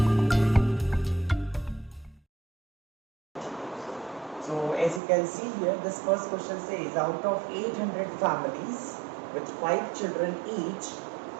So as you can see here, this first question says out of 800 families with 5 children each,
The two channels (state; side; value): drops out; left; at 5.0 s